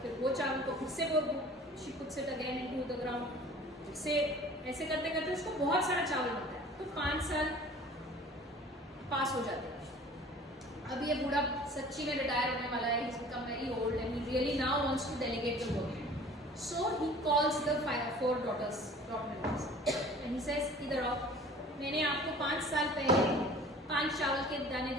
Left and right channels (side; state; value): both; normal; correlation 0.47